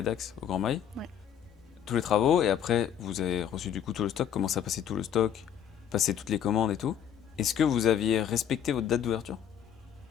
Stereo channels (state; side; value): quieter; right; 9.2 dB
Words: au Grand Mail. Ouais. Tous les travaux, et après, vous avez reçu du coup tout le stock, commencé à passer tout le stock, passer toutes les commandes et tout. Est-ce que vous aviez respecté votre date d'ouverture?